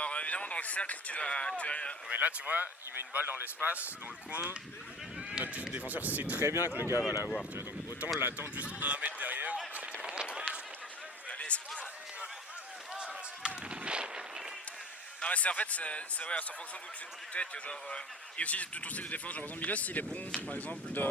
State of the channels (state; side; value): normal; both; correlation 0.40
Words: évidemment, dans le cercle, tu vas. Mais là, tu vois, il met une balle dans l'espace, dans le coin. Notre défenseur sait très bien que le gars va l'avoir. Tu vois, donc autant l'attendre juste 1 mètre derrière. C'était vraiment cool. Allez, c'est bon. Non, mais c'est en fait, c'est ouais, en fonction d'où tu es, que genre. Et aussi de ton style de défense. Genre, par exemple, Milos, il est bon, par exemple.